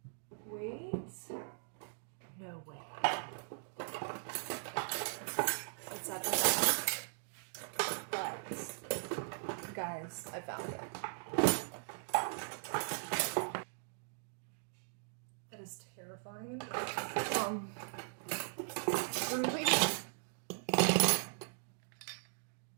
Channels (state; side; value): silent; left; digital silence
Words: Wait. No way. It's at the back. But, guys, I found it. That is terrifying. Really?